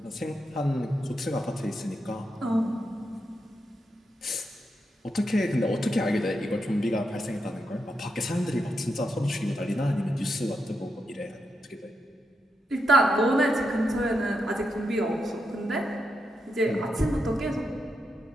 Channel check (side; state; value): both; normal; correlation 0.84